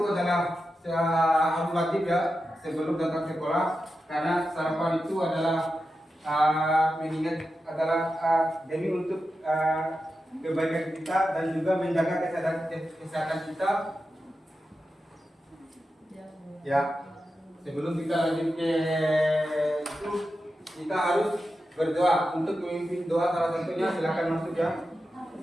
adalah harus wajib ya sebelum datang sekolah, karena sarapan itu adalah mengingat demi untuk kebaikan kita dan juga menjaga kesehatan kita. Ya. Sebelum kita lanjut ke itu, kita harus berdoa. Untuk memimpin doa salah satunya, silakan masuk ya.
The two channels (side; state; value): both; normal; correlation 0.90